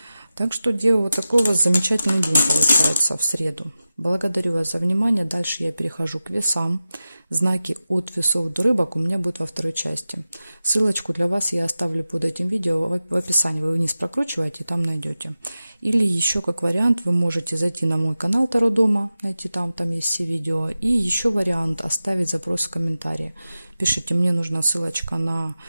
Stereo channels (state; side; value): inverted; both; correlation -0.94